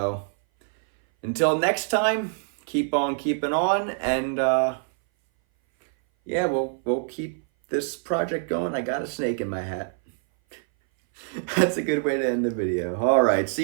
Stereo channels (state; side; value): silent; left; 59 dB below the other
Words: until next time, keep on keeping on, and yeah, we'll keep this project going. I got a snake in my hat. That's a good way to end the video. All right,